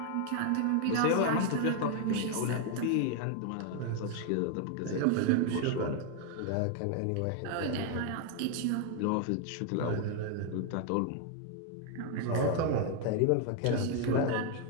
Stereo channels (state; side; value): different; both; correlation 0.00